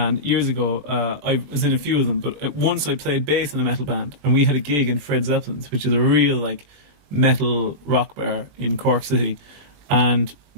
years ago I was in a few of them, but once I played bass in a metal band, and we had a gig in Fred Zeppelin's, which is a real like metal rock bar in Cork City, and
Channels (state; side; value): late; left; 21 ms